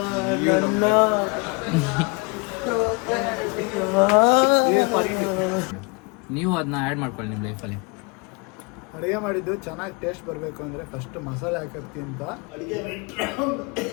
ನೀವು ಅದನ್ನ ಆ್ಯಡ್ ಮಾಡ್ಕೊಳ್ಳಿ ನಿಮ್ಮ ಲೈಫಲ್ಲಿ. ಅಡುಗೆ ಮಾಡಿದ್ದು ಚೆನ್ನಾಗಿ ಟೇಸ್ಟ್ ಬರಬೇಕು ಅಂದರೆ ಫಸ್ಟ್ ಮಸಾಲೆ ಹಾಕಿ ಅಂತ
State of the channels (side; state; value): right; quieter; 30.3 dB